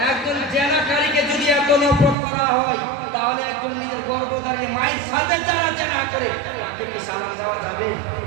একজন জেনাকারীকে যদি এত নফরত করা হয়, তাহলে একজন নিজের গর্ভধারিণী মায়ের সাথে যারা জেনা করে, তাকে কি সালাম দেওয়া যাবে?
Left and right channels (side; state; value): left; drops out; at 2.1 s